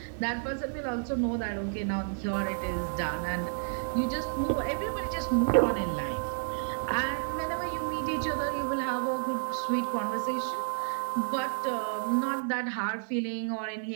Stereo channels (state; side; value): silent; left; 57 dB below the other